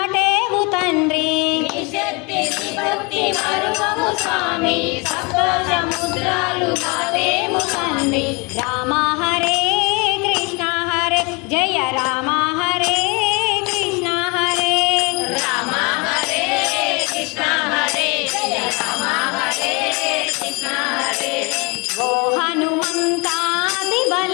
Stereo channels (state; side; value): quieter; right; 29.5 dB